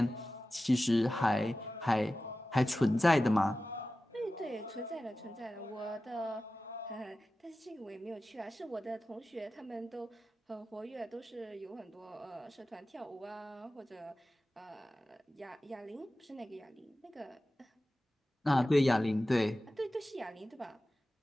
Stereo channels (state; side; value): normal; both; correlation 0.95